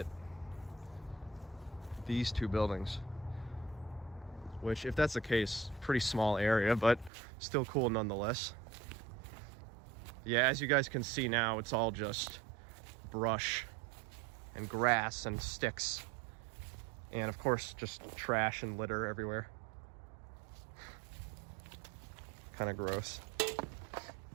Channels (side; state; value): left; drops out; at 7.1 s